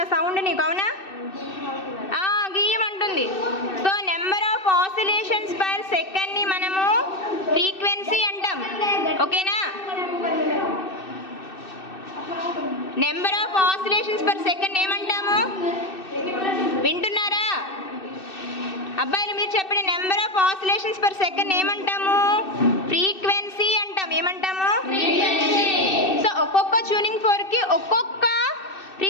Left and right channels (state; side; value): late; right; 2.6 ms